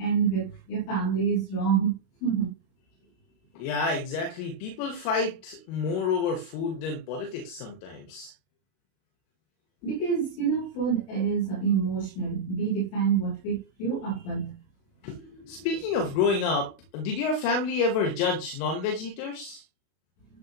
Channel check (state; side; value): late; right; 32 ms